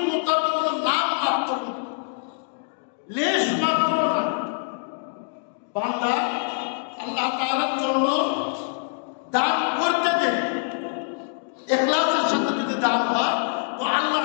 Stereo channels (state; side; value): silent; right; digital silence